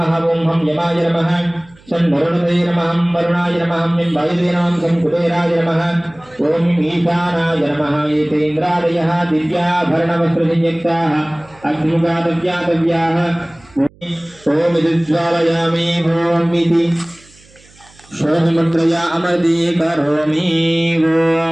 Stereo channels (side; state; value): right; noise; hum, 27 dB below the sound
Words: ఓం హం యమాయ నమః వరుణాయ నమః వరుణాయ నమః నింబాయ నమః కుబేరాయ నమః ఓం ఈశానాయ నమః ఏతేంద్రాదయః దివ్యాభరణవస్త్రసంయుక్తాః అగ్నిముఖాదవ్యాతవ్యాః ఓం విద్జ్వాలయామి ఓం ఇతి శోభముద్రయా అమర్దీ కరోమి